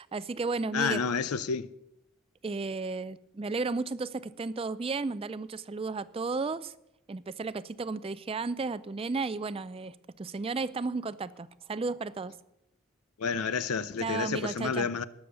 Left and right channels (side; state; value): both; normal; correlation 0.32